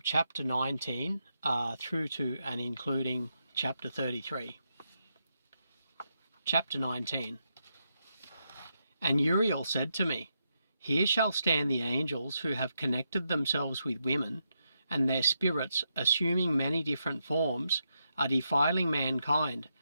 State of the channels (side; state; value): both; inverted; correlation -0.83